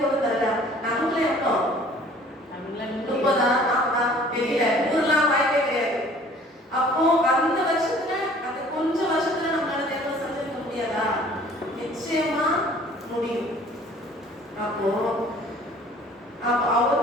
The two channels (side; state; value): both; normal; correlation 0.52